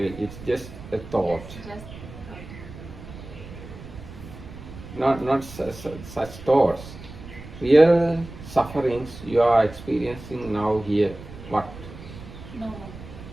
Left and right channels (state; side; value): noise; right; rumble, 14 dB below the sound